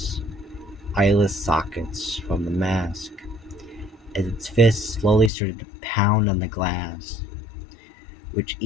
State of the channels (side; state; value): right; drops out; at 5.3 s